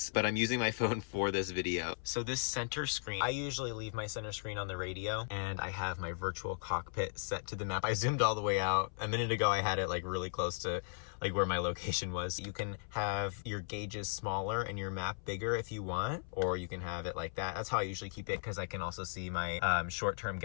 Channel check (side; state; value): right; silent; 53 dB below the other